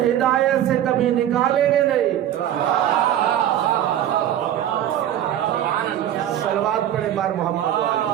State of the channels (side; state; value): left; quieter; 11.3 dB